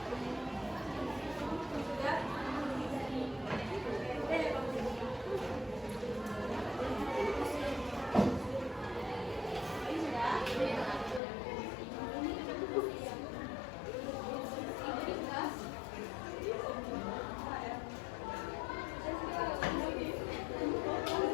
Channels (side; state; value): right; drops out; at 11.2 s